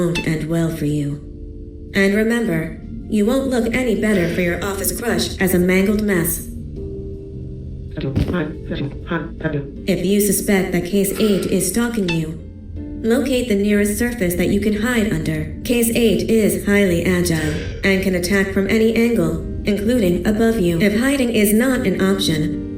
end well for you. And remember, you won't look any better for your office crush as a mangled mess. If you suspect that Case 8 is stalking you, locate the nearest surface that you can hide under. Case 8 is highly agile and can attack from any angle, including above you. If hiding is not an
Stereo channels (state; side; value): identical; both; correlation 1.00